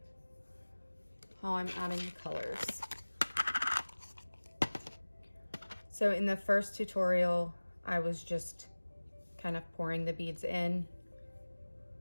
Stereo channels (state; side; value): inverted; both; correlation -1.00